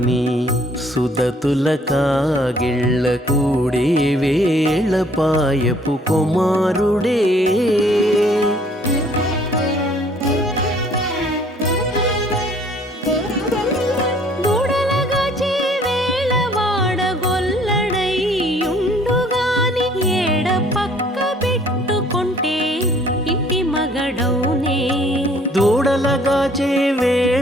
సుదతుల కాగిళ్ళ కూడే వేళ పాయపు కుమారుడే. దూడలగాచే వేళ వాడగొల్లడైయుండుగాని ఏడ పక్క పెట్టుకుంటే ఇంటి మగడౌనే. దూడలగాచే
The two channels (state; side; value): normal; both; correlation 0.59